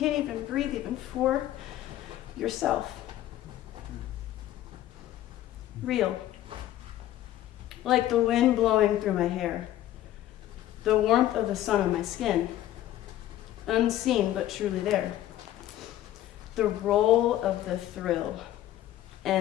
even breathe even for yourself. Real. Like the wind blowing through my hair. The warmth of the sun on my skin. Unseen but truly there. The roll of the thrill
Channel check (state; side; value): quieter; right; 13.3 dB